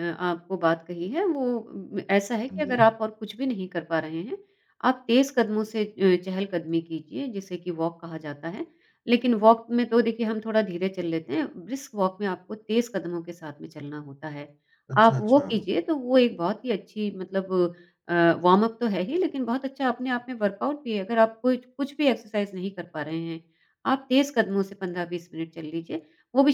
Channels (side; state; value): both; identical; correlation 1.00